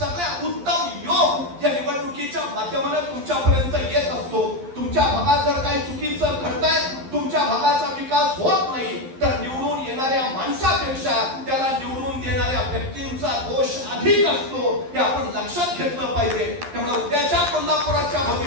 उत्तम योग या निवडणुकीच्या माध्यमाने तुमच्यापर्यंत येत असतो। तुमच्या भागात जर काही चुकीचं घडतंय, तुमच्या भागाचा विकास होत नाही, तर निवडून येणाऱ्या माणसापेक्षा त्याला निवडून देणाऱ्या व्यक्तींचा दोष अधिक असतो, हे आपण लक्षात घेतलं पाहिजे। त्यामुळे उद्याच्या कोल्हापुराच्या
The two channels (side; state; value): left; late; 11 ms